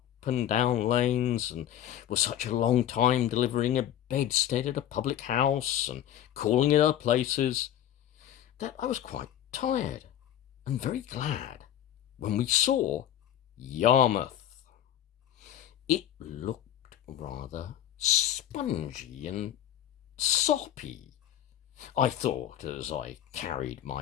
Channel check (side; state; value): right; quieter; 11.3 dB